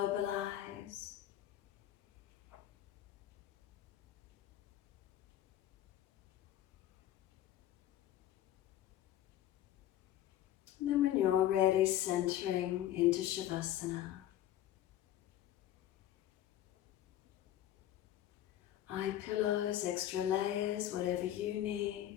And then when you're ready, centering into Shavasana. Eye pillows, extra layers, whatever you need.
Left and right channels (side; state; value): right; quieter; 12.6 dB